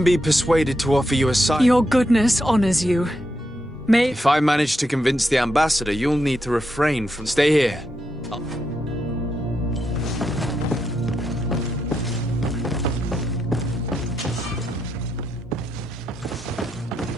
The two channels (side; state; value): both; normal; correlation 0.83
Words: be persuaded to offer you asylum. Your goodness honors you. If I manage to convince the ambassador, you'll need to refrain from... Stay here.